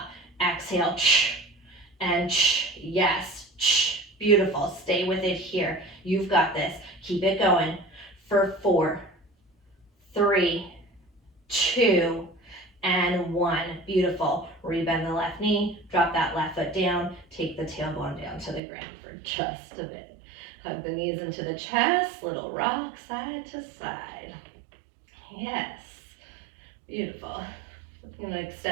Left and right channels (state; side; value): drops out; left; at 18.6 s